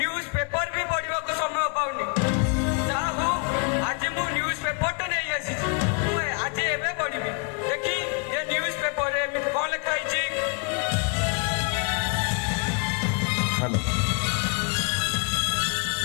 पेपर भी पढ़ा को समय पाऊनी आज मु न्यूज पेपर तो नहीं आसी आज एवं पढ़ी देखी ये न्यूज पेपर कौन लिखाई।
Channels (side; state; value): right; quieter; 35.3 dB